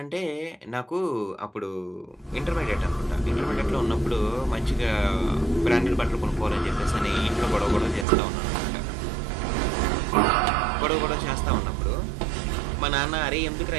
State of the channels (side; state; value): left; drops out; at 8.1 s